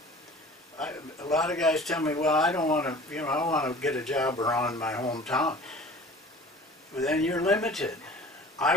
A lot of guys tell me, well, I don't want to, I want to get a job around my hometown. But then you're limited. I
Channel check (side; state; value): both; normal; correlation 0.44